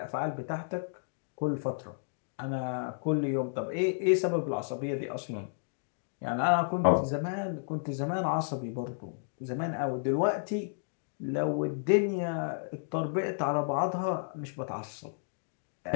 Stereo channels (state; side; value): silent; right; digital silence